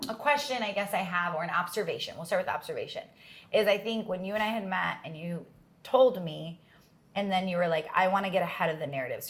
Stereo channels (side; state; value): both; identical; correlation 1.00